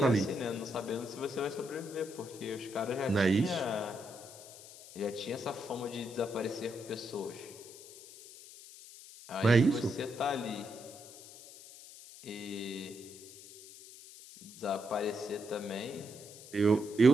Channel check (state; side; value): noise; left; hiss, 17 dB below the sound